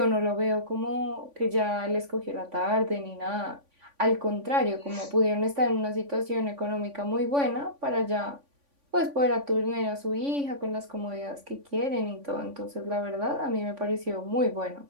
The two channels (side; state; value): left; late; 3.5 ms